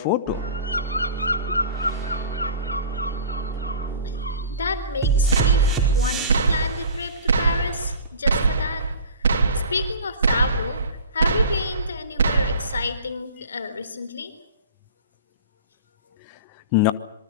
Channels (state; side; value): inverted; both; correlation -0.40